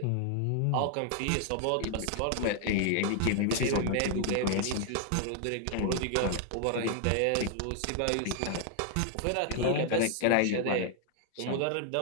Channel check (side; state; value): both; different; correlation 0.00